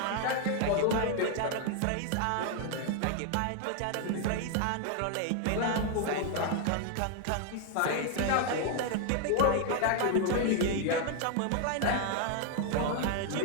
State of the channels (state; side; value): different; both; correlation 0.00